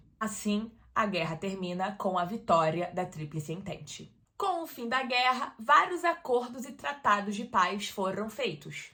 Assim, a guerra termina com a vitória da Tríplice Entente. Com o fim da guerra, vários acordos e tratados de paz foram feitos,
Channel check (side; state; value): both; identical; correlation 1.00